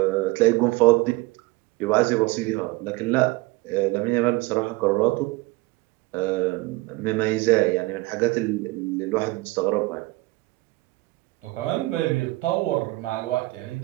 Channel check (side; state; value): left; quieter; 21.6 dB